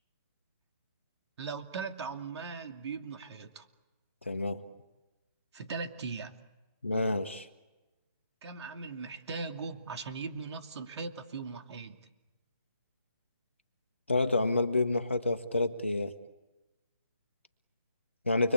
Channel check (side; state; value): both; inverted; correlation -0.74